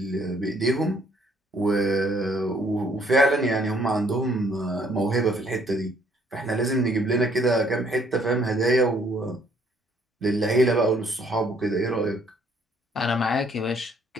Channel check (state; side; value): normal; both; correlation 0.64